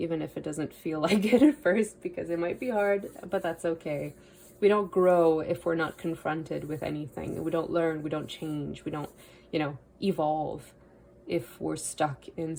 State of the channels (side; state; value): both; identical; correlation 1.00